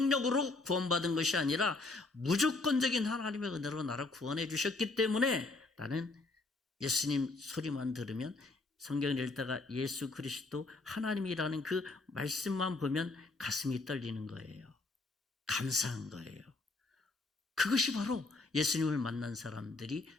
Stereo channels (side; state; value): right; quieter; 3.4 dB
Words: 구원받은 것이 아니라 무조건적인 하나님의 은혜로 나를 구원해 주셨기 때문에 나는 예수님 소리만 들으면, 성경을 읽다가 예수 그리스도 하나님이라는 그 말씀만 보면 가슴이 떨리는 거예요. 감사한 거예요. 그것이 바로 예수님을 만난 사람들이